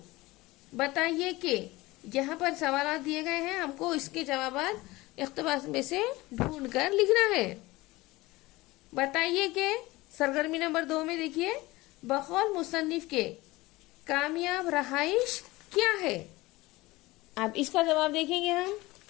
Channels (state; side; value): quieter; right; 20.3 dB